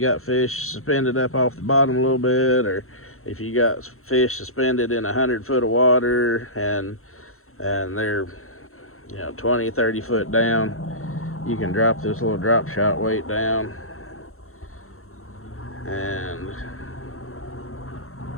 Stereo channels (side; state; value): right; late; 0.62 ms